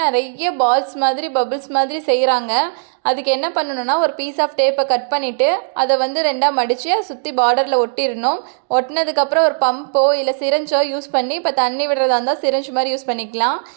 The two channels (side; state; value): left; silent; digital silence